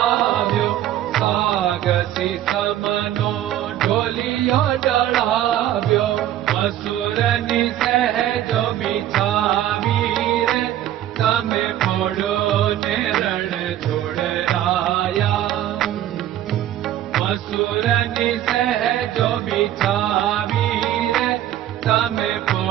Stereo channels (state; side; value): quieter; left; 12.3 dB